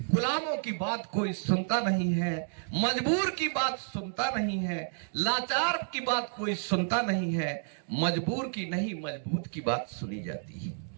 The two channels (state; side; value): silent; left; digital silence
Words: गुलामों की बात कोई सुनता नहीं है, मजबूर की बात सुनता नहीं है, लाचार की बात कोई सुनता नहीं है, मजबूर की नहीं मजबूत की बात सुनी जाती